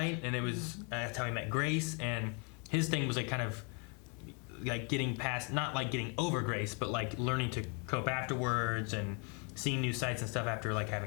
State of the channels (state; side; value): quieter; right; 33.8 dB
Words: And it was that's how he met Grace, and his thing was like kind of like getting past, not like getting over Grace, but like learning to cope afterwards and seeing new sights and stuff after like